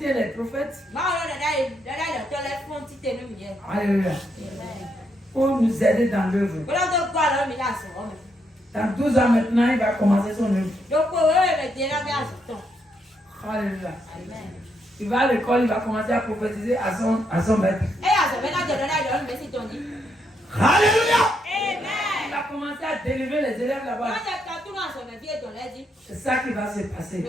les prophètes. Alléluia. Pour nous aider dans l'œuvre. Dans 12 ans maintenant, il va commencer son œuvre. Alléluia. Il va à l'école, il va commencer à prophétiser à son maître. Alléluia. Il va commencer à délivrer les élèves là-bas. C'est ça qui va se passer.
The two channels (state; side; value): normal; both; correlation 0.77